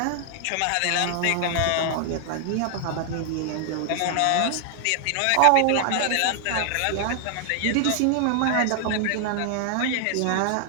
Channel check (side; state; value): both; different; correlation 0.00